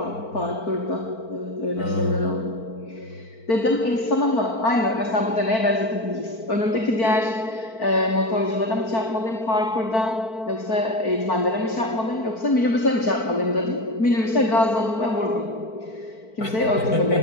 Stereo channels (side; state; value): right; late; 4.5 ms